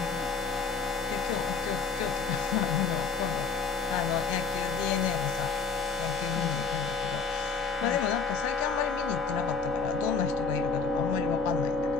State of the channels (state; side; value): quieter; right; 5.2 dB